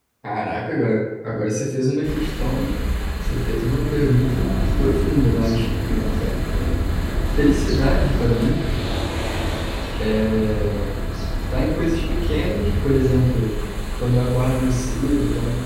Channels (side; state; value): both; identical; correlation 1.00